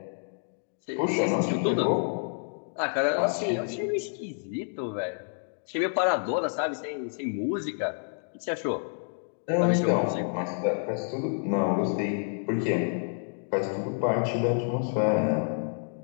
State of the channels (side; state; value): right; silent; digital silence